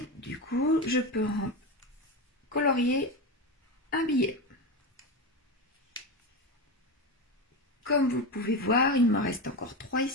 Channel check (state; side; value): normal; both; correlation 0.18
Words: du coup, je peux colorier un billet. Comme vous pouvez voir, il me reste encore 3